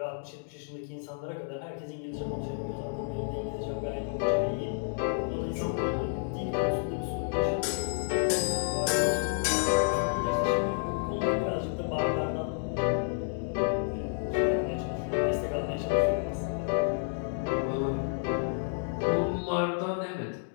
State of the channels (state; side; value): silent; right; digital silence